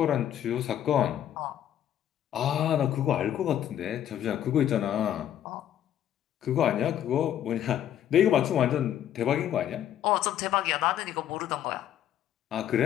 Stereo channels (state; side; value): quieter; right; 10.8 dB